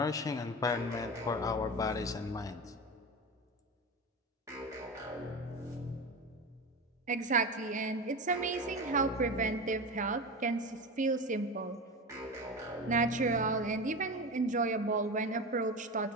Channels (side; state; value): both; normal; correlation 0.25